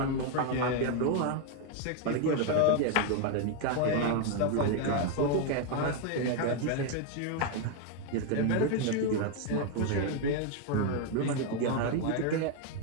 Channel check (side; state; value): both; different; correlation 0.01